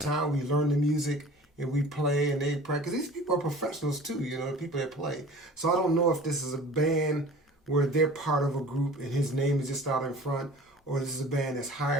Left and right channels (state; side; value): normal; both; correlation 0.43